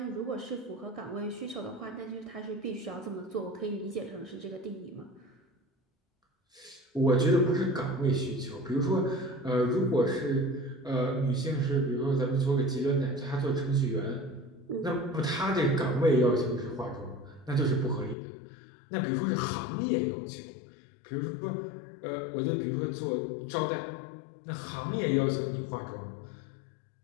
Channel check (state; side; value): drops out; right; at 18.2 s